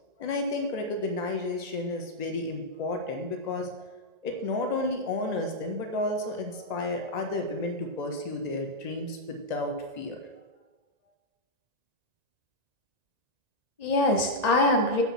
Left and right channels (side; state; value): left; late; 1.9 ms